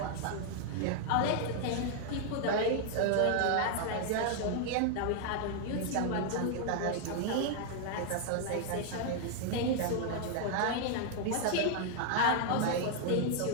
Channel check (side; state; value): both; different; correlation 0.00